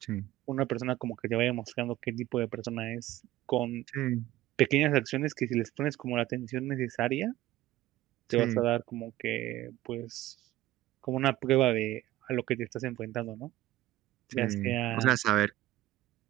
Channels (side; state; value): left; quieter; 15.9 dB